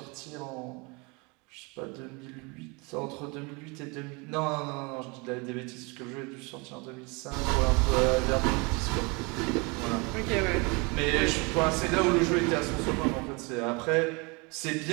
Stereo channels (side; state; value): left; quieter; 28.8 dB